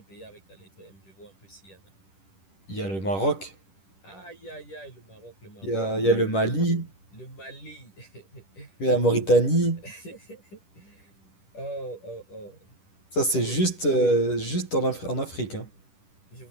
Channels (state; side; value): late; right; 10 ms